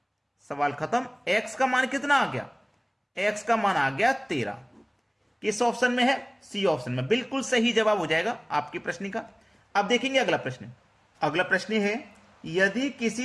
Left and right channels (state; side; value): identical; both; correlation 1.00